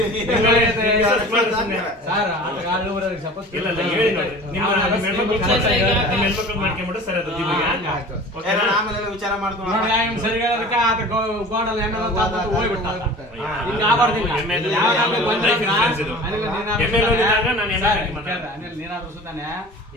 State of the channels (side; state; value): both; normal; correlation 0.40